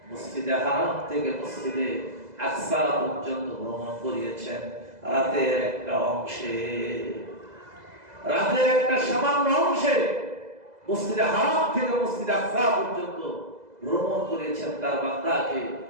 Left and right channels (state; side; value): late; left; 2.0 ms